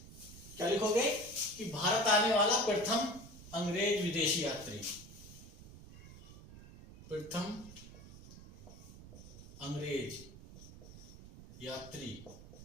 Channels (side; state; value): right; noise; rumble, 17 dB below the sound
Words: क्या लिखोगे? कि भारत आने वाला प्रथम अंग्रेज विदेशी यात्री, प्रथम अंग्रेज यात्री